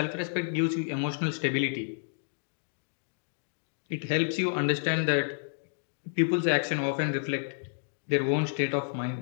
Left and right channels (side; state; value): right; silent; digital silence